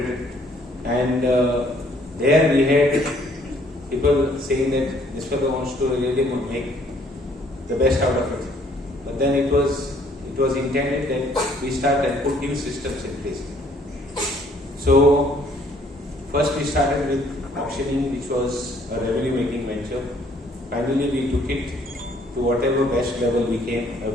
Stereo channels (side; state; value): both; normal; correlation 0.62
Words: And there we had people saying that this fellow wants to really make the best out of it. But then it was intended that we start and put new systems in place. So first we started with auctioning, which was a revenue-making venture. Finally, we took it to whatever best level we could